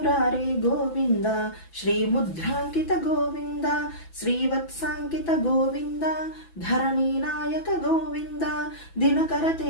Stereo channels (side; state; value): right; late; 6.0 ms